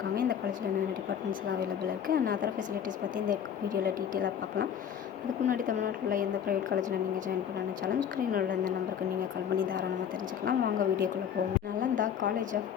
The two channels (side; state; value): right; quieter; 8.6 dB